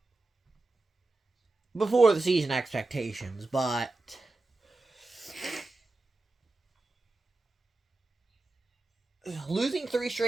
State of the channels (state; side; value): quieter; left; 3.1 dB